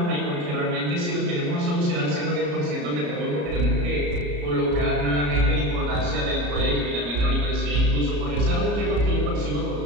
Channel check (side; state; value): left; late; 34 ms